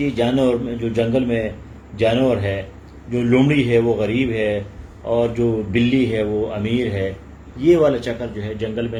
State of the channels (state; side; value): identical; both; correlation 1.00